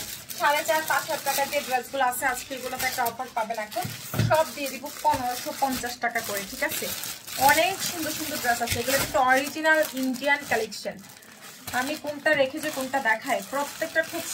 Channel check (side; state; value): both; identical; correlation 1.00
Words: 4,500-5,000 টাকার যে ড্রেসগুলো আছে, আজকে এগুলোতে একটা অফার পাবেন। এখন সব দিয়ে দিব 1550 টাকা করে, ঠিক আছে? অনেক সুন্দর সুন্দর ড্রেস আছে, এগুলো কিন্তু অরিজিনাল ইন্ডিয়ান কালেকশন। আমি কোনটা রেখেছি কোনটা দেখাই, প্রত্যেকটা খুব